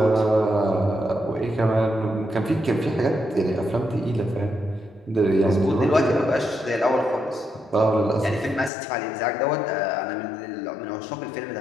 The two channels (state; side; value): drops out; right; at 8.7 s